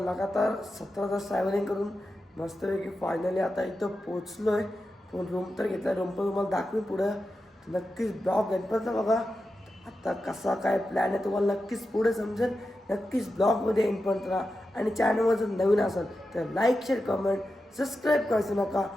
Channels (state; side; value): normal; both; correlation 0.90